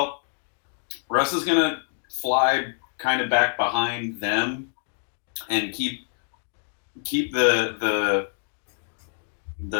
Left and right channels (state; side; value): silent; right; digital silence